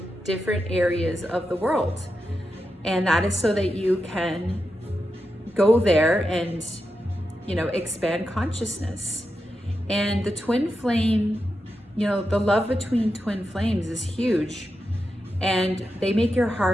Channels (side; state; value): both; normal; correlation 0.88